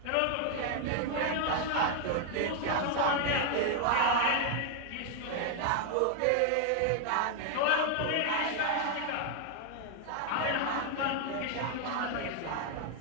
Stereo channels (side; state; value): both; different; correlation 0.00